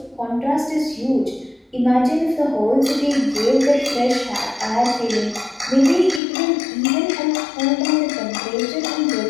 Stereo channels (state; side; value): drops out; right; at 6.2 s